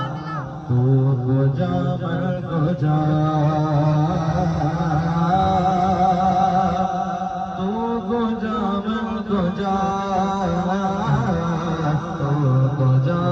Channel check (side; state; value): both; identical; correlation 1.00